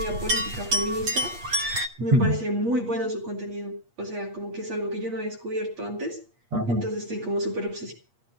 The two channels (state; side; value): late; left; 8.4 ms